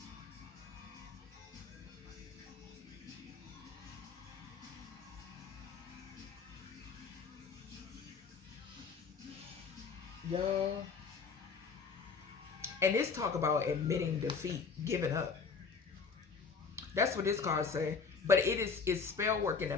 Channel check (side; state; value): right; quieter; 5.4 dB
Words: Y'all. And this talk about admitting defeat, giving up. That's what this card say. But it's spell work in the